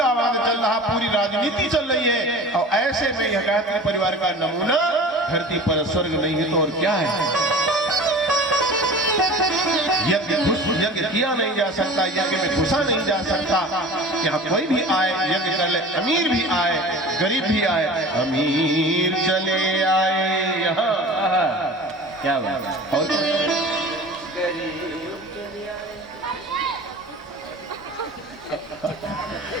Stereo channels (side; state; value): both; normal; correlation 0.39